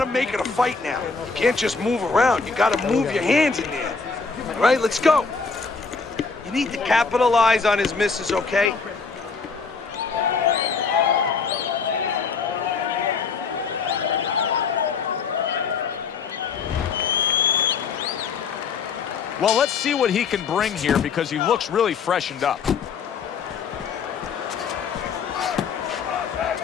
make it a fight now. You can't just move around. You got to move your hands in there. All right, let's go. You need to capitalize on his misses, okay? Well, let's see what he can bring here because he looks really freshened up.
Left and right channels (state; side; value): quieter; right; 5.1 dB